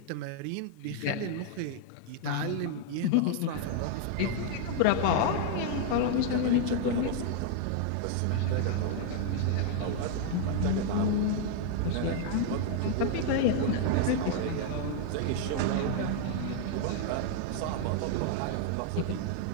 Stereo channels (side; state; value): both; different; correlation 0.00